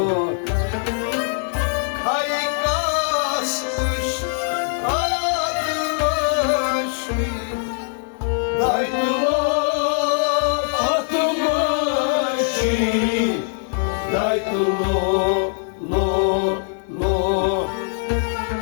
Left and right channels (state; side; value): silent; right; digital silence